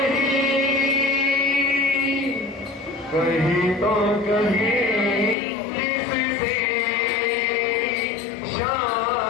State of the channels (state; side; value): drops out; right; at 5.4 s